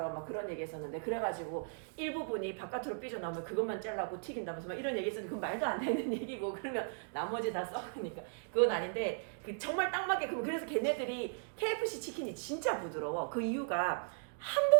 막 그런 얘기 했었는데 그래가지고 일부분이 바깥으로 삐져나오면 그것만 잘라고 튀긴다면서 막 이런 얘기 했었는데 그건 말도 안 되는 얘기고 그러면 나머지 다 썩으니까 그건 아닌데 그 정말 딱 맞게 그래서 걔네들이 KFC 치킨이 진짜 부드러워 그 이유가 한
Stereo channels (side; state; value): left; silent; digital silence